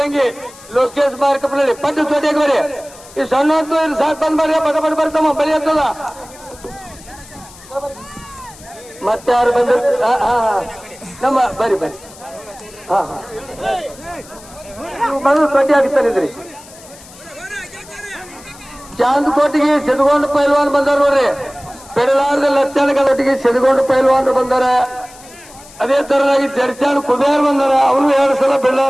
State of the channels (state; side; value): noise; left; hiss, 21 dB below the sound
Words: ಲೋಕೇಶ್ ಮಾರ್ಕಪ್ನಳ್ಳಿ. ಪಟ್ಟು ಚೋಟಿಯಾಗಿ ಬರಿ. ಈ ಸಣ್ಣ ಹೊತ್ತು ಇಲ್ಲಿ ಸಾಕು ಬಂದ್ ಮಾಡಿ ಪಟ ಪಟ ಬರ್ತಮ್ಮ ಬಲಿ ಆಗ್ತದ. ಮತ್ತೆ ಯಾರು ಬಂದ್ರು? ನಮ್ಮ ಬರಿ ಬರಿ. ಬಂದು ಚೋಟಿ ಹಾಕ್ತಾನಿದ್ರಿ. ಚಾಂದ್ಕೋಟಿಗೆ ಸಿದ್ಗೊಂಡು ಪೈಲ್ವಾನ್ ಬಂದಾರ ನೋಡ್ರಿ. ಪೆಡಲಾರ್ದ ಲಕ್ಷಣಗಟ್ಟಿಗೆ ಸಿದ್ಗೊಂಡು ಪೈಲ್ವಾನ್ ಬಂದಾರ. ಅದೇ ತರನಾಗಿ ಜಡ್ಚಾಣ್ ಕುಬೇರ್ ಬಂದಾರ. ಅವರು 2 ಸಲ